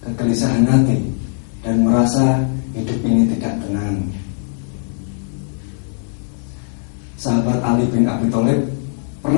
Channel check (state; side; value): silent; right; 66 dB below the other